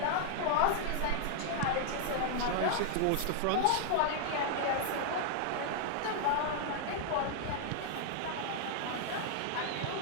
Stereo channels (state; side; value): different; both; correlation 0.00